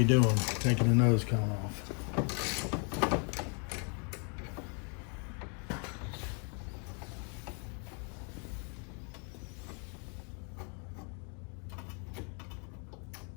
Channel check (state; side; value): quieter; right; 38.1 dB